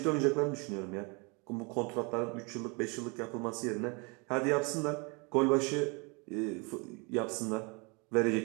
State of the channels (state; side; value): quieter; left; 30.5 dB